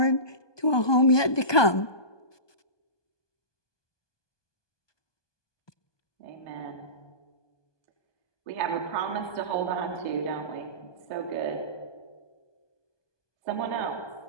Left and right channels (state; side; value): late; right; 1.2 ms